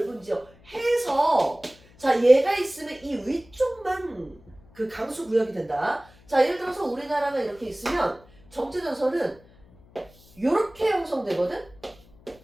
지역 해서, 자, 얘가 있으면 이 위쪽만 그 강수 구역이 된다. 자, 예를 들어서 우리나라가 이렇게 있으면 정체전선은 이렇게 형성되거든?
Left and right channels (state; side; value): noise; left; hum, 26 dB below the sound